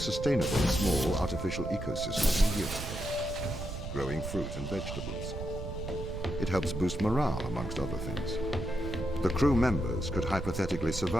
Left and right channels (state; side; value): noise; right; rumble, 7 dB below the sound